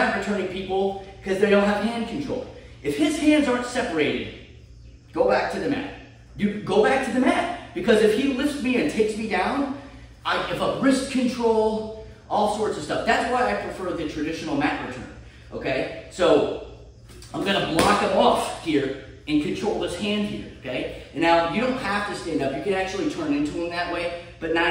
returning people because they don't have hand control. If his hands aren't separated, go back to the mat. You go back to the mat. Because if he lifts me and takes me down, I have a wrist control, all sorts of stuff. That's why I prefer the traditional mat return. Okay? So I'm gonna block him off here and control this hand here. Okay? And now you don't have to stand up. You can actually turn into him that way, but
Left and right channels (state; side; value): identical; both; correlation 1.00